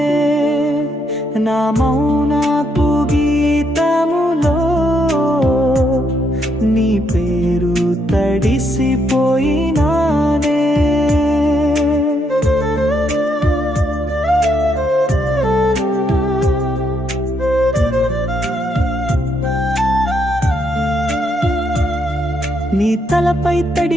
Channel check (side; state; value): both; normal; correlation 0.76